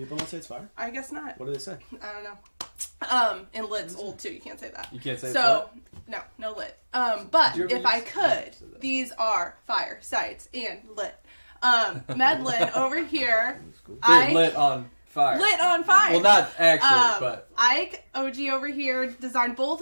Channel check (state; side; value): inverted; both; correlation -1.00